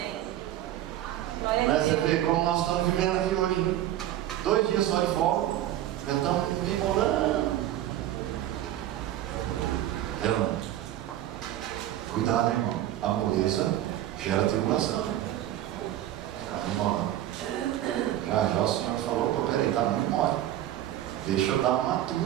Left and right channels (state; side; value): quieter; left; 13.1 dB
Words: Você vê como nós estamos vivendo aqui hoje. 2 dias só de folga, já estamos enrolando. Cuidado, irmão. A moleza gera tribulação. Fica enrolando. Já o Senhor falou: pô, peraí, tá muito mole. Deixa eu dar uma